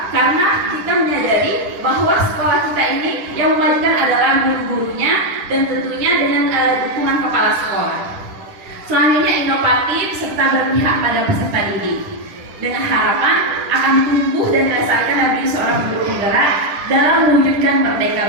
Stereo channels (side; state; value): left; late; 10 ms